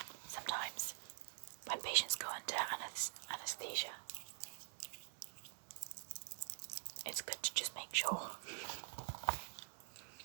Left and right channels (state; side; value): silent; left; digital silence